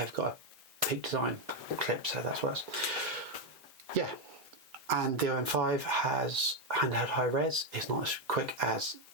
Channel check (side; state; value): both; normal; correlation 0.05